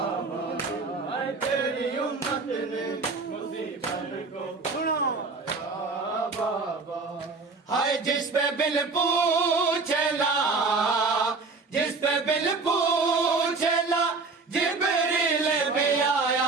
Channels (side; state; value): left; quieter; 4.0 dB